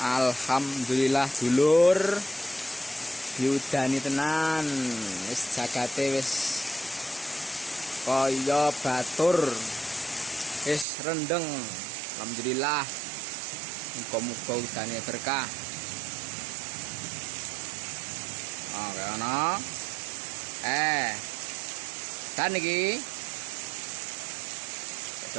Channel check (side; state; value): left; drops out; at 10.9 s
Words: Alhamdulillah dulur, diudani tenan, wis jagate wis kaya batur, wis rendeng. Alhamdulillah, muga-muga udane berkah. Oke, ana. Dan iki